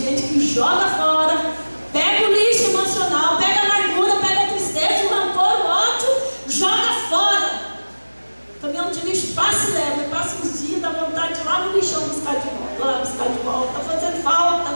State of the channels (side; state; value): both; inverted; correlation -1.00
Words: que joga fora, pega o lixo emocional, pega a amargura, pega a tristeza, o rancor, o ódio, joga fora. O caminhão de lixo passa e leva, passa uns dias, dá vontade de ir lá no lixão buscar de volta, lá buscar de volta, está fazendo falta.